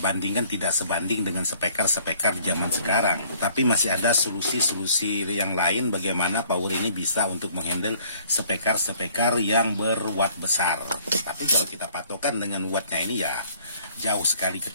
tidak sebanding dengan speaker di zaman sekarang. Tapi masih ada solusi-solusi yang lain bagaimana power ini bisa untuk menghandle speaker yang berwatt besar. Tapi kalau kita patokan dengan wattnya ini ya jauh sekali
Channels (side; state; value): both; inverted; correlation -0.58